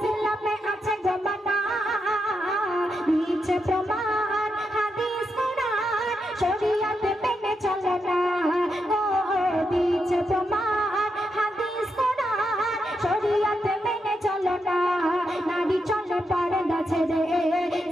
আছে জমানা দিচ্ছে প্রমাণ হাদিস কোরআন শরিয়ত মেনে চলো না ও দিচ্ছে প্রমাণ হাদিস কোরআন শরিয়ত মেনে চলো না। নারী চলে পর্দা ছেড়ে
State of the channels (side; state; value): both; normal; correlation 0.83